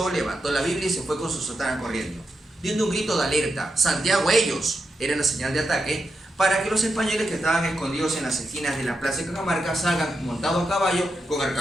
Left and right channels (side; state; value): both; normal; correlation 0.86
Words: levantó la Biblia y se fue con su sotana corriendo, dando un grito de alerta: Santiago, ellos. Era la señal de ataque para que los españoles que estaban escondidos en las esquinas de la plaza de Cajamarca salgan montados a caballo, con